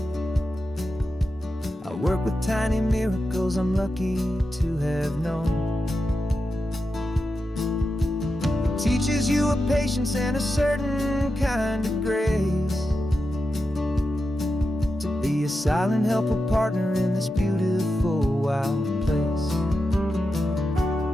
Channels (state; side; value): normal; both; correlation 0.89